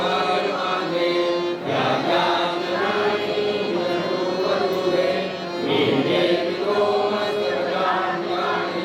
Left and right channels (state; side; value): identical; both; correlation 1.00